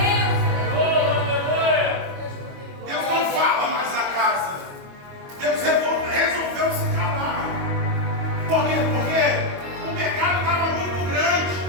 Deus não fala mais na casa. Deus resolveu se calar. Por quê? Porque o pecado estava muito grande.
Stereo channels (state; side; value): late; left; 22 ms